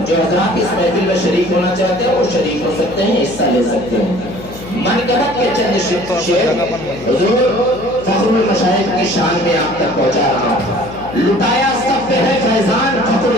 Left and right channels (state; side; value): noise; left; hum, 15 dB below the sound